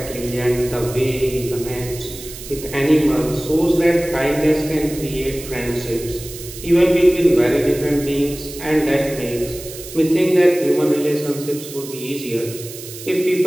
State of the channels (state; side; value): noise; right; hiss, 13 dB below the sound